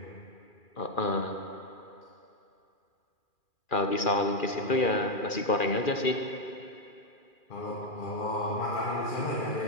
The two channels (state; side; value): late; right; 2.4 ms